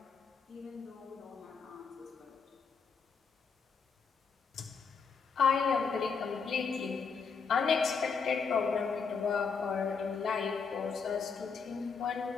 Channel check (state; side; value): quieter; right; 5.5 dB